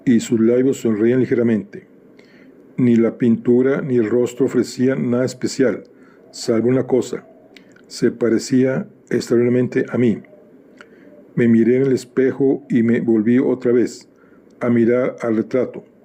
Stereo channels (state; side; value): identical; both; correlation 1.00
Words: y sus labios sonreían ligeramente. Ni la pintura ni el rostro ofrecían nada especial, salvo una cosa: se parecía extraordinariamente a mí. Me miré en el espejo y me volví otra vez a mirar al retrato,